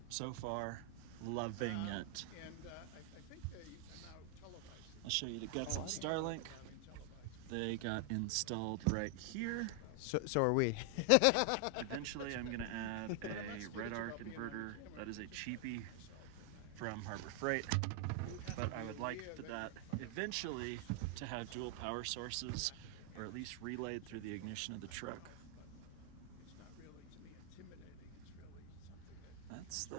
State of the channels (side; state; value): both; different; correlation 0.00